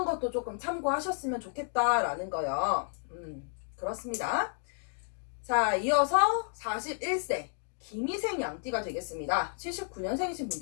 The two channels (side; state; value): right; silent; 57 dB below the other